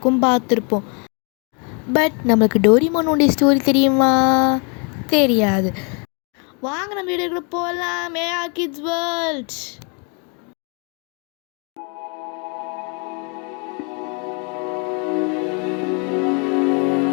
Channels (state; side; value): quieter; right; 35.9 dB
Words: பார்த்துருப்போம். பட் நம்மளுக்கு டோரிமானோட ஸ்டோரி தெரியுமா? தெரியாது. வாங்க நம்ம வீடியோக்குள்ள போகலாம். AR kids world.